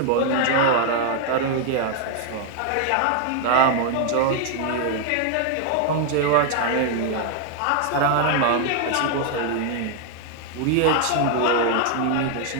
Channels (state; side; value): different; both; correlation 0.00